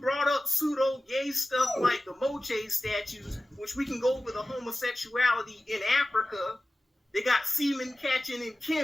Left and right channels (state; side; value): normal; both; correlation 0.96